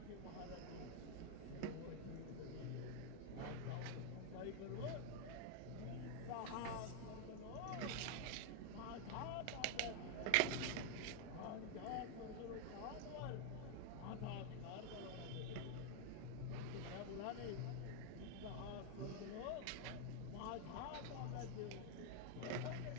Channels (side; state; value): both; different; correlation 0.01